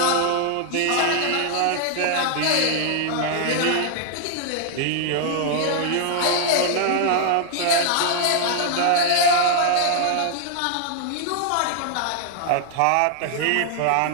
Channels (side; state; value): both; different; correlation 0.00